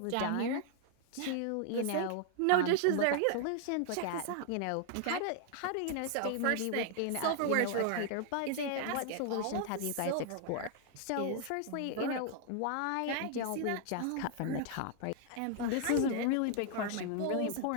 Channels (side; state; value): both; different; correlation 0.00